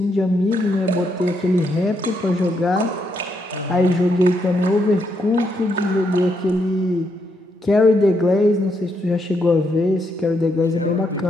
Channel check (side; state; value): both; normal; correlation 0.78